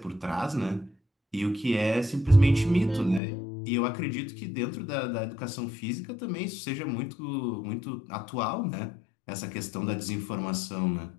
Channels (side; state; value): right; drops out; at 3.2 s